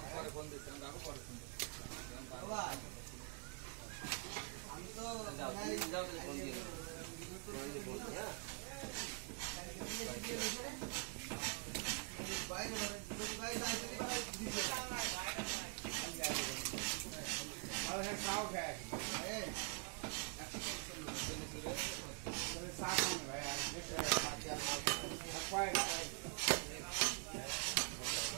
আমি তো ফোন দিয়ে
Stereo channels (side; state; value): left; quieter; 39.3 dB